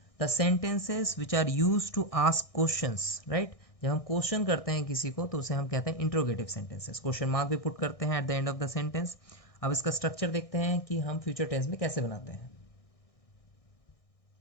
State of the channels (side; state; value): right; late; 1.6 ms